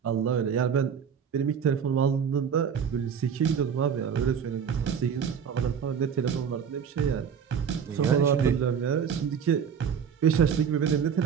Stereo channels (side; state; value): left; quieter; 7.3 dB